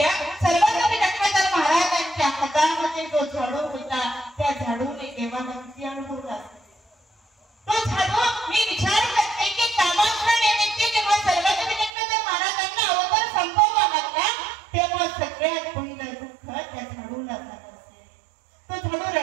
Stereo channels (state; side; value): drops out; left; at 11.9 s